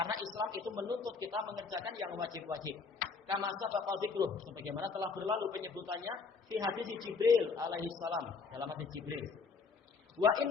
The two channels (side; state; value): right; quieter; 4.8 dB